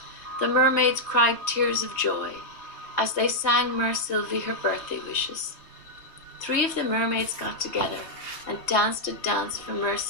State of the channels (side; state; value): right; late; 3.1 ms